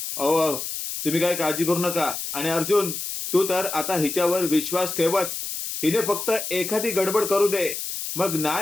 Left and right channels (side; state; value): left; noise; hiss, 5 dB below the sound